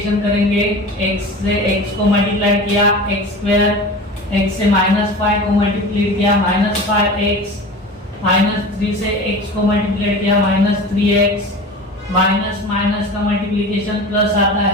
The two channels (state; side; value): normal; both; correlation 0.34